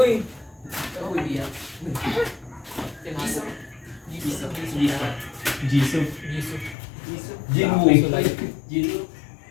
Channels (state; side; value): drops out; right; at 6.8 s